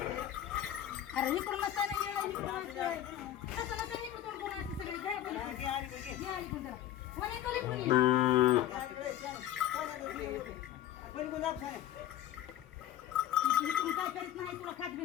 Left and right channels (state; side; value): quieter; right; 12.2 dB